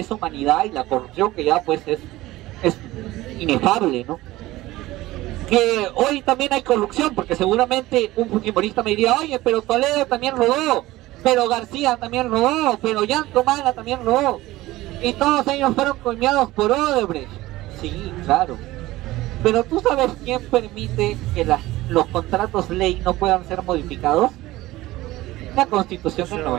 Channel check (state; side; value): quieter; left; 17.7 dB